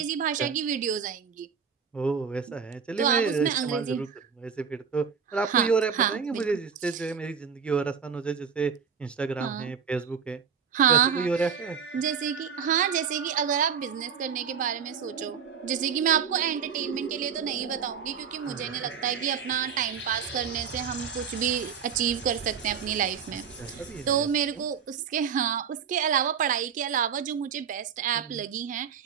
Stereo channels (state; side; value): quieter; left; 7.1 dB